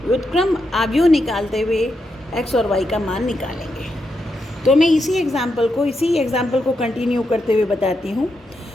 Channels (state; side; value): normal; both; correlation 0.84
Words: व्युत्क्रम आव्यूह निकालते हुए x और y का मान निकालेंगे। तो मैं इसी एग्जाम्पल को कंटिन्यू करते हुए बताती हूँ।